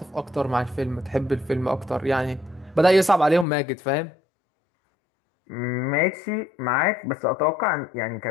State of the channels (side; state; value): right; drops out; at 3.5 s